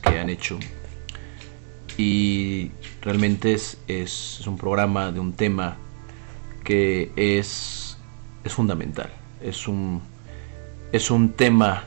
han hecho y realmente es un programa de un tema que es fundamental. Es un tema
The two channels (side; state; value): left; silent; 56 dB below the other